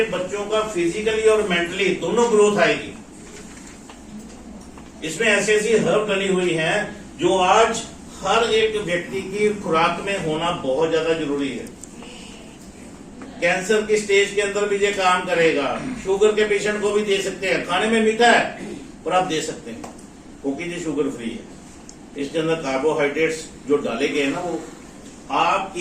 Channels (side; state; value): both; identical; correlation 1.00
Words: बच्चों का फिजिकली और मेंटली दोनों ग्रोथ आएगी। इसमें ऐसी ऐसी हर्ब डली हुई हैं जो आज हर एक व्यक्ति की खुराक में होना बहुत ज्यादा जरूरी है। कैंसर की स्टेज के अंदर भी ये काम करेगा, शुगर के पेशेंट को भी दे सकते हैं। खाने में मीठा है पर आप दे सकते हैं क्योंकि ये शुगर फ्री है। इसके अंदर कार्बोहाइड्रेट्स जो डाले गए हैं ना, वो